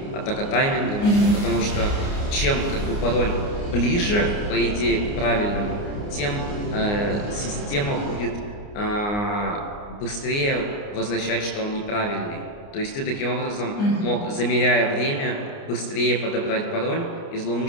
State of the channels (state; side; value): late; right; 29 ms